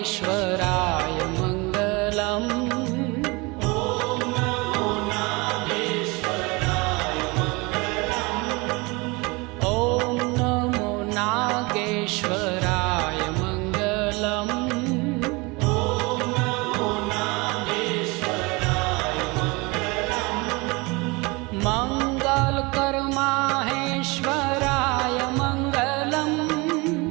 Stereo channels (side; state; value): left; quieter; 26.0 dB